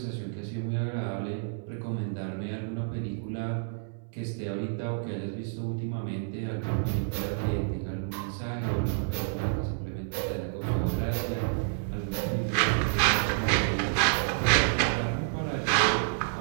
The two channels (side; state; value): left; silent; 58 dB below the other